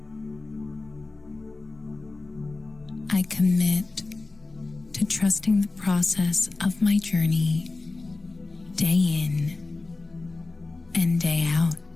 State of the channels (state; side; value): quieter; right; 3.4 dB